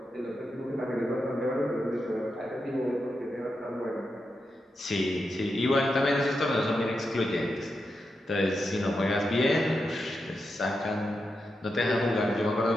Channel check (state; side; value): normal; both; correlation 0.87